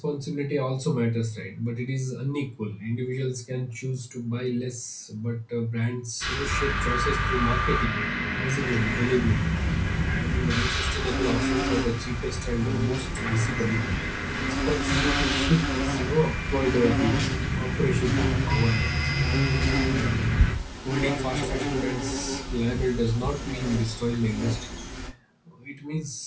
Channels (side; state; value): both; identical; correlation 1.00